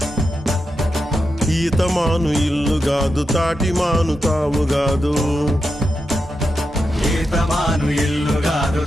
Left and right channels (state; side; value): normal; both; correlation 0.87